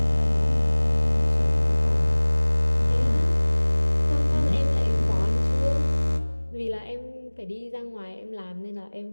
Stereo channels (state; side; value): inverted; both; correlation -1.00